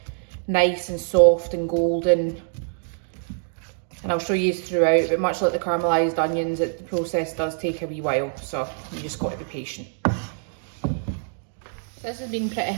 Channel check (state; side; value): silent; left; digital silence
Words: nice and soft and golden. And I'll show you throughout, but much like the caramelized onions, the process does take a wee while, so you just got to be patient. This has been pretty